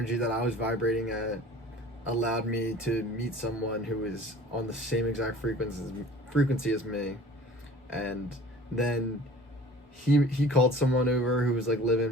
that I was vibrating at, allowed me to meet someone who was on the same exact frequency as me. And then he called someone over who was like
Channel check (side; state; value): both; normal; correlation 0.46